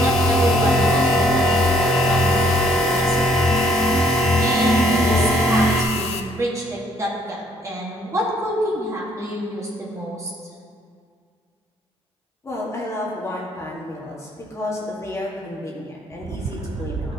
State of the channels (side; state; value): both; normal; correlation 0.65